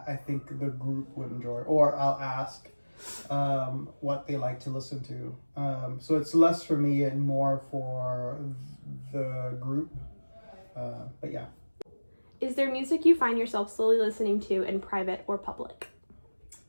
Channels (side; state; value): both; inverted; correlation -1.00